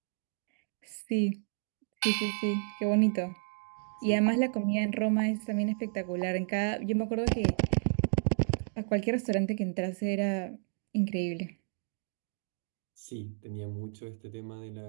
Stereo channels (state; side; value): silent; left; 56 dB below the other